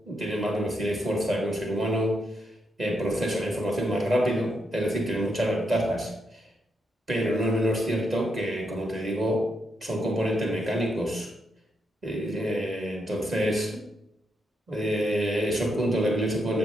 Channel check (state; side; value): normal; both; correlation 0.81